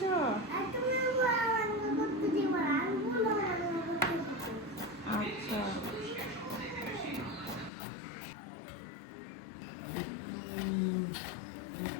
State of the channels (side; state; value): right; drops out; at 7.7 s